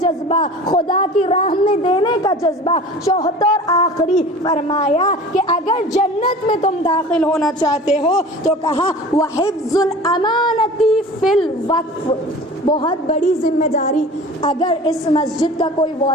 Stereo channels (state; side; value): normal; both; correlation 0.40